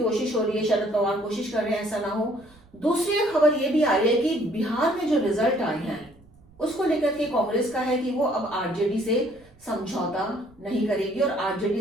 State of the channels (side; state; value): right; noise; rumble, 28 dB below the sound